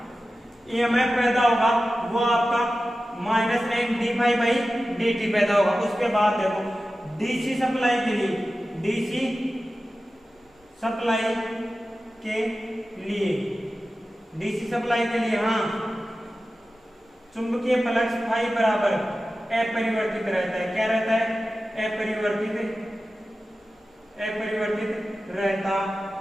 ईएमएफ पैदा होगा वो आपका minus N D phi by D T पैदा होगा। उसके बाद देखो डीसी सप्लाई के लिए, डीसी सप्लाई के लिए, डीसी सप्लाई के लिए हाँ चुंबकीय फ्लक्स फाई बराबर अपरिवर्तित रहता है। क्या रहता है, अपरिवर्तित, अपरिवर्तित रहता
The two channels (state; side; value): normal; both; correlation 0.94